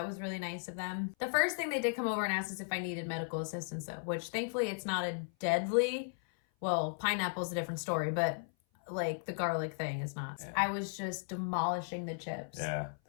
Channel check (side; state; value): right; silent; 54 dB below the other